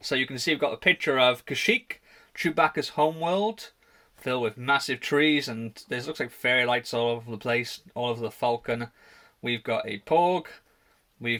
you can see we've got a picture of Kashyyyk, Chewbacca's homeworld, filled with massive trees, and there looks like fairy lights all over the place, all over the Falcon. We've got a Porg,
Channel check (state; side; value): identical; both; correlation 1.00